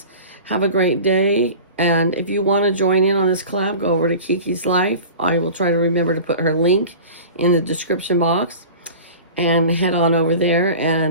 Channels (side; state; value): both; inverted; correlation -0.38